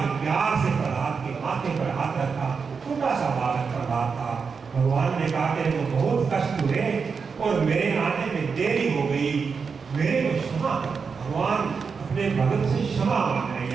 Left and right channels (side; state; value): left; quieter; 5.5 dB